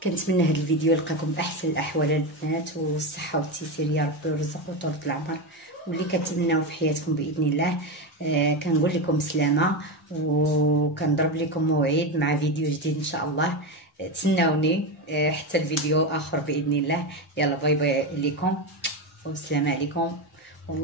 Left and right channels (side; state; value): both; normal; correlation 0.15